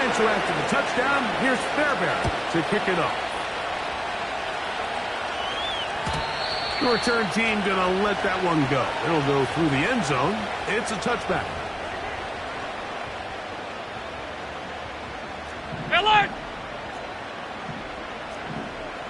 And so after the touchdown, here's Fairbairn to kick it off. The return team going to let that one go. It'll go through the end zone. It's a touchback. Alert!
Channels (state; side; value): identical; both; correlation 1.00